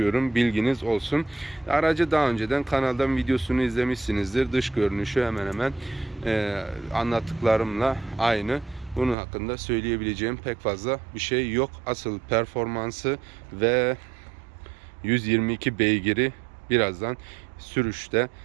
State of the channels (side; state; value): left; drops out; at 9.2 s